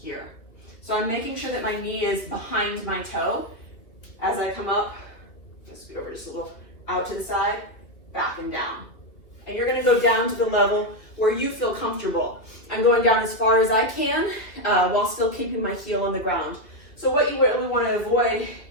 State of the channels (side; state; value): right; late; 2.6 ms